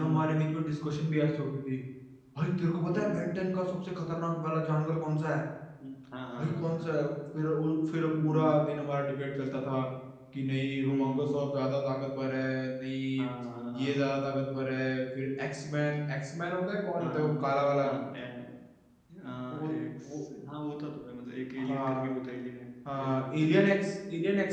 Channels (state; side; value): identical; both; correlation 1.00